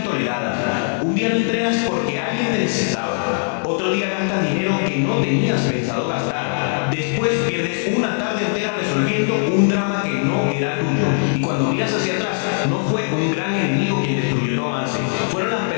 toleradas. Un día no entrenas porque alguien te necesitaba. Otro día gastas dinero que no tenías pensado gastar. Después pierdes una tarde entera resolviendo un drama que no era tuyo. Y cuando miras hacia atrás, no fue un gran enemigo quien destruyó tu avance. Fueron las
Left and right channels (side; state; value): right; silent; 66 dB below the other